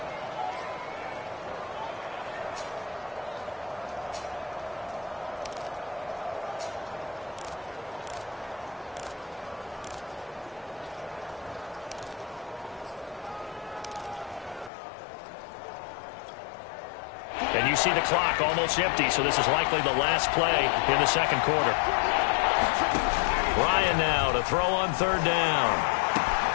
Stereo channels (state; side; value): drops out; right; at 14.7 s